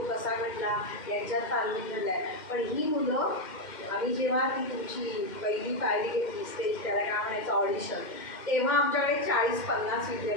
कसा म्हटला यांच्यात तालमीत घडला आहे. पण ही मुलं, आम्ही जेव्हा ती तुमची पहिली पायरी घेतली स्टेज, त्याला काय म्हणायचं ऑडिशन, तेव्हा आमच्याकडे 40-50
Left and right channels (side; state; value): right; late; 2.1 ms